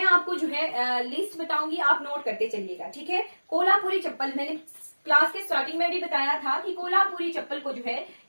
आपको जो है लिस्ट बताऊंगी, आप नोट करते चलिएगा, ठीक है। कोल्हापुरी चप्पल, मैंने क्लास के स्टार्टिंग में भी बताया था कि कोल्हापुरी चप्पल को जो है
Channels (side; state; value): both; inverted; correlation -1.00